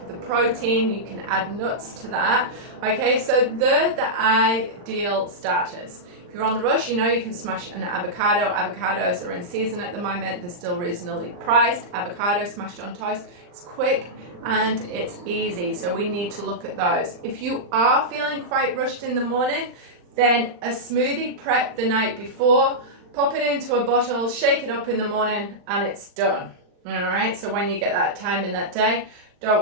the protein. You can add nuts to that. Okay, so they're the ideal starters. If you're on the rush, you know, you can smash an avocado. Avocados are in season at the moment. They're still reasonably priced. Avocado smashed on toast. It's quick and it's easy. So we need to look at those. If you are feeling quite rushed in the morning, then a smoothie prep the night before, pop it into a bottle, shake it up in the morning, and it's done. All right, so when you get that time in that day,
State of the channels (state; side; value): late; left; 39 ms